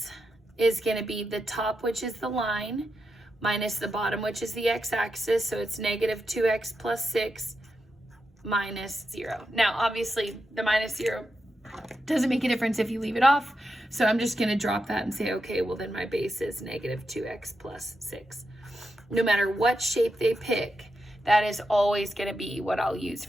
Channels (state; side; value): normal; both; correlation 0.87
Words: is going to be the top, which is the line, minus the bottom, which is the x-axis. So it's negative 2x plus 6 minus 0. Now, obviously, the minus 0 doesn't make a difference if you leave it off. So I'm just going to drop that and say, okay, well, then my base is negative 2x plus 6. No matter what shape they pick, that is always going to be what I'll use